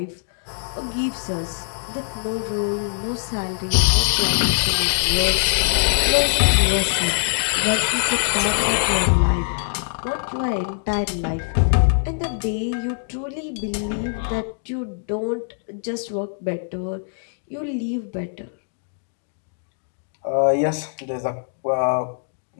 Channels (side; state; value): right; silent; digital silence